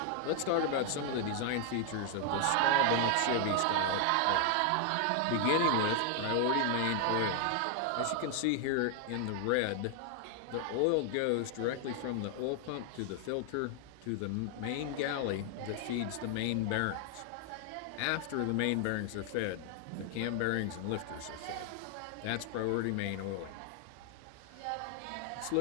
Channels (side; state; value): both; different; correlation 0.00